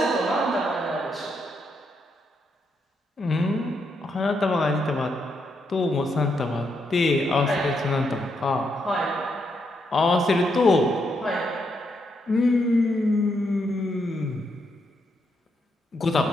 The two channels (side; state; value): both; normal; correlation 0.79